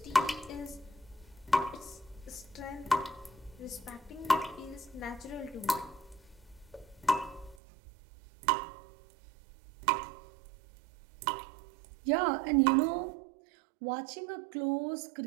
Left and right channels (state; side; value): drops out; left; at 7.6 s